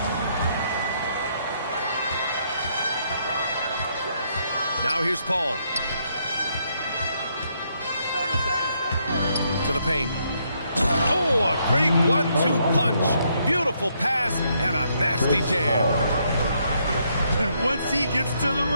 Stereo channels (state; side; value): inverted; both; correlation -0.74